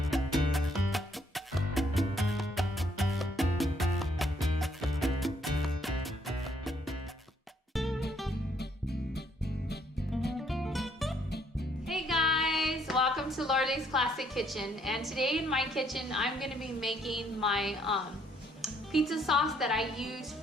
Hey guys, welcome to Loreley's Classic Kitchen. And today in my kitchen, I'm gonna be making my pizza sauce that I use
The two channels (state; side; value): normal; both; correlation 0.68